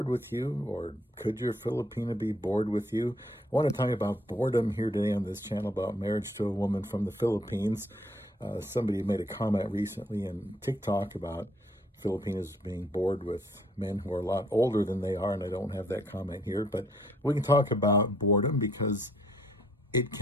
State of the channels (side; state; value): both; normal; correlation 0.66